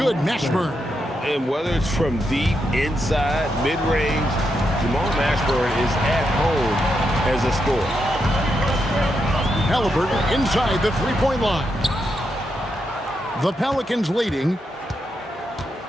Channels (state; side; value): normal; both; correlation 0.83